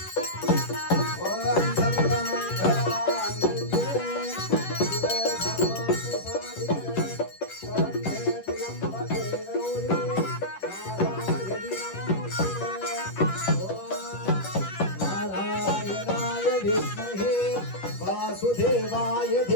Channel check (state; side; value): late; right; 10 ms